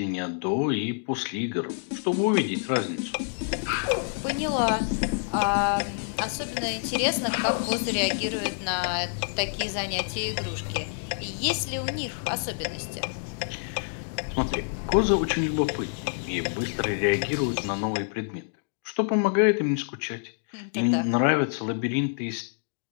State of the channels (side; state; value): right; silent; digital silence